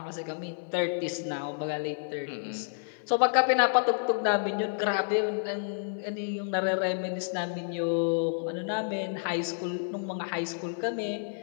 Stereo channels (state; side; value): silent; right; digital silence